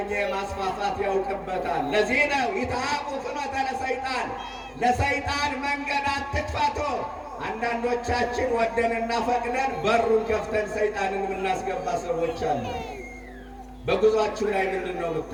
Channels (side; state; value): both; identical; correlation 1.00